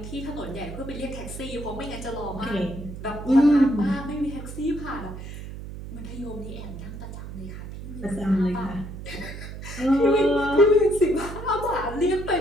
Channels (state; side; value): noise; right; hum, 10 dB below the sound